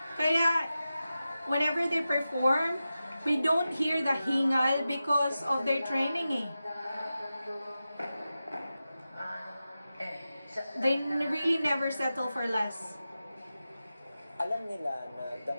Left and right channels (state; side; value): inverted; both; correlation -0.93